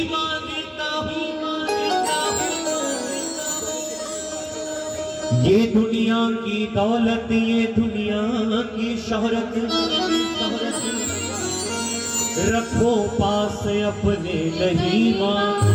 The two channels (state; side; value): identical; both; correlation 1.00